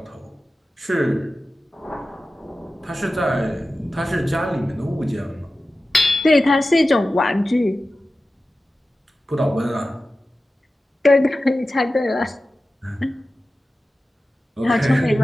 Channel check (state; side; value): normal; both; correlation 0.94